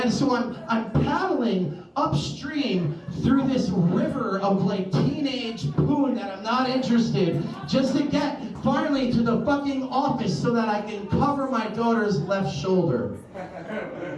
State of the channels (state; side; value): identical; both; correlation 1.00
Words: so I'm paddling upstream through this river of like teenage poon that I'm not interested, just to get finally to the fucking office so that I can cover my daughter's left shoulder.